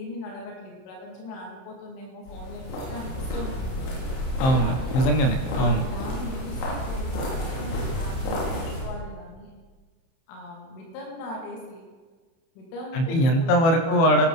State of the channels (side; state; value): right; late; 32 ms